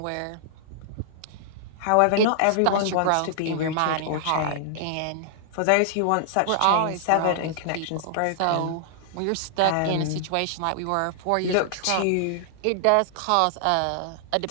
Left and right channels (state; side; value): different; both; correlation -0.01